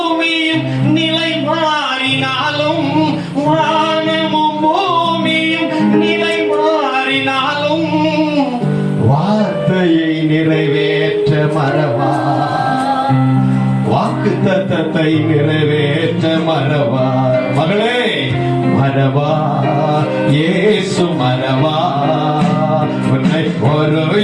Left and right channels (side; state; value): both; identical; correlation 1.00